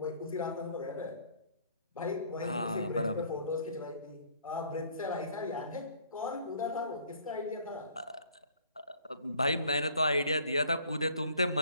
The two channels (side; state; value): both; inverted; correlation -0.58